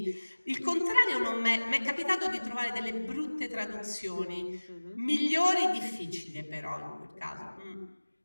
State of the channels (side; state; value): both; inverted; correlation -1.00